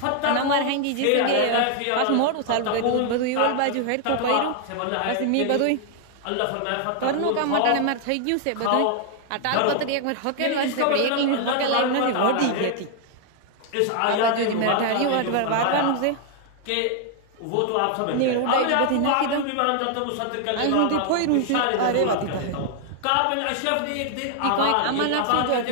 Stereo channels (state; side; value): different; both; correlation 0.00